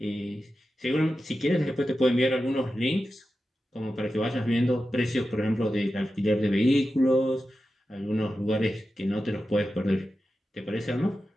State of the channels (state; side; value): normal; both; correlation 0.92